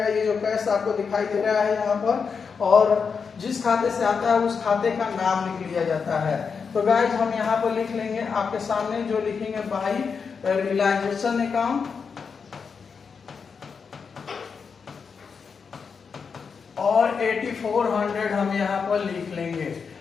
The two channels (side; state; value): right; quieter; 5.7 dB